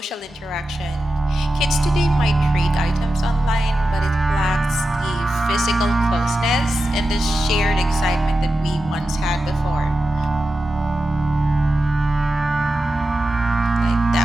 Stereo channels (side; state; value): both; normal; correlation 0.91